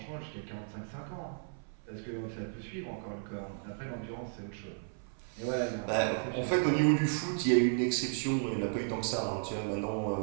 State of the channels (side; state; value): left; silent; 55 dB below the other